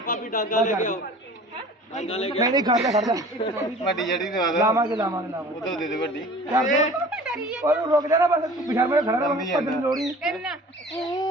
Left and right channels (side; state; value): both; normal; correlation 0.44